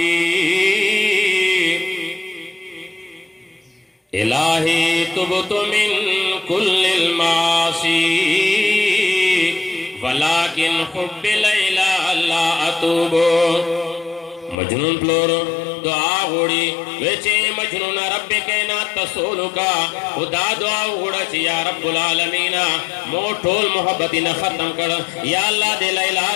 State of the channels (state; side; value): drops out; right; at 14.6 s